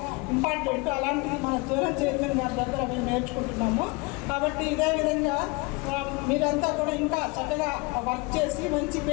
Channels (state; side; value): quieter; right; 26.6 dB